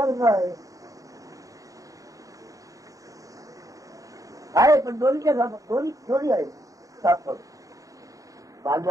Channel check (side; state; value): left; late; 0.16 ms